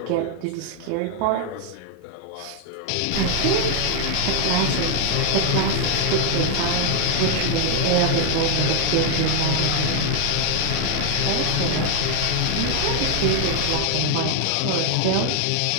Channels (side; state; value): both; different; correlation 0.01